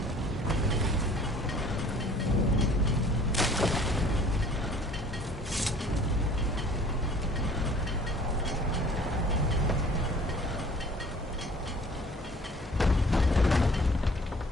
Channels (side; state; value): both; normal; correlation 0.52